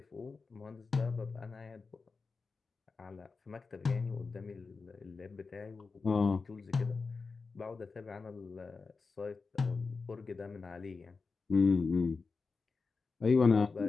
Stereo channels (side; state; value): right; quieter; 4.5 dB